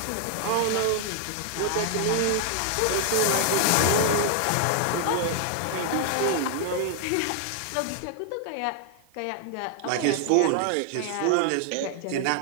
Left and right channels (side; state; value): both; different; correlation 0.00